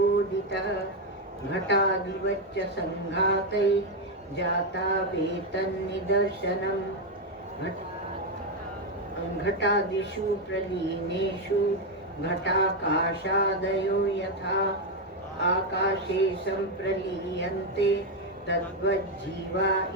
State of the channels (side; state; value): both; normal; correlation 0.05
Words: घटादिवच्च संघातैः जाता वेतन्निदर्शनम् घटादिषु प्रलीनेषु घटाकाशादयो यथा आकाशे संप्रलीयन्ते तद्वज्जीवा